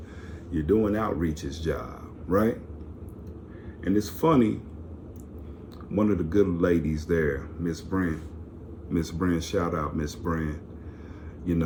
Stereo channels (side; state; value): both; identical; correlation 1.00